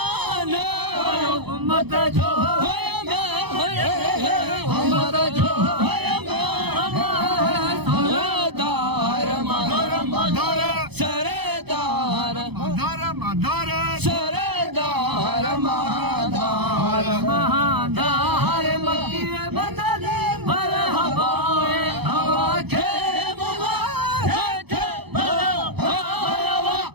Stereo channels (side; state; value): left; late; 0.98 ms